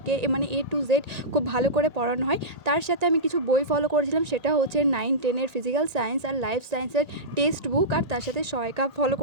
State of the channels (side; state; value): left; late; 1.9 ms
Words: মানে এ টু জেড খুব ভালো করে পড়ানো হয়। তার সাথে আমি কিছু বই ফলো করেছিলাম, সেটা হচ্ছে 9-10-এর ফিজিক্যাল সায়েন্স আর লাইফ সায়েন্সের টেক্সট বুক, আর তার সাথে সহায়িকা ফলো